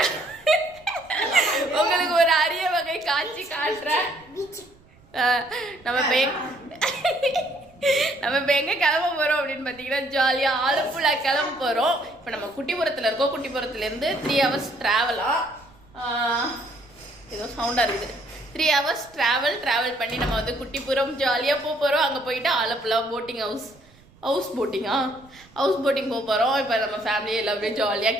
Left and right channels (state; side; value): noise; right; rumble, 27 dB below the sound